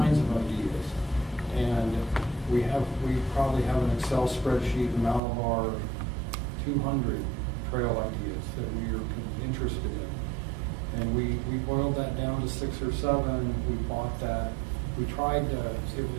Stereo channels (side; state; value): left; drops out; at 5.2 s